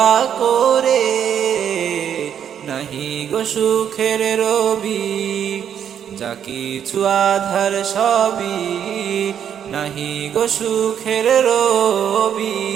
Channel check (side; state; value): left; quieter; 8.9 dB